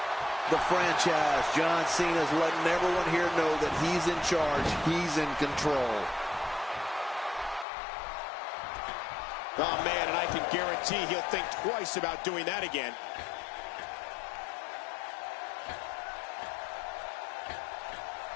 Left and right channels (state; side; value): drops out; right; at 7.7 s